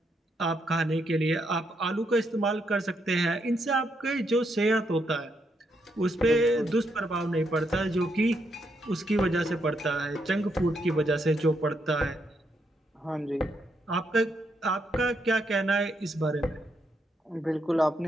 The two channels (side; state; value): both; normal; correlation 0.78